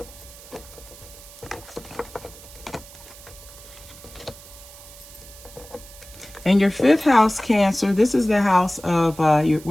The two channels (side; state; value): right; noise; hiss, 19 dB below the sound